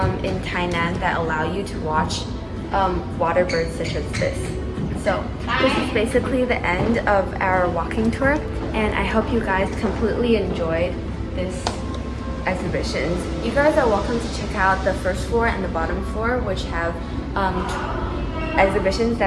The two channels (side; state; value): both; identical; correlation 1.00